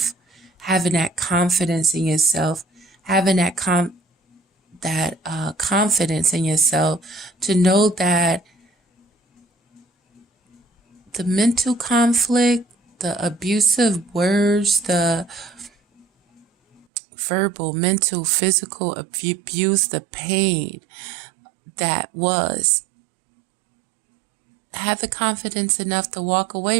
having that confidence in yourself, having that confidence in yourself to know that the mental conflict, the abusive words, the verbal, mental, physical abuse, the pain that was, have the confidence enough to walk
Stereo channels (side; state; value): left; drops out; at 16.9 s